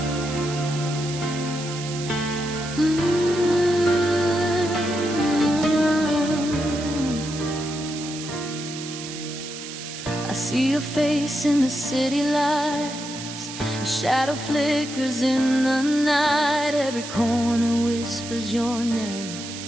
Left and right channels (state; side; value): noise; right; hiss, 10 dB below the sound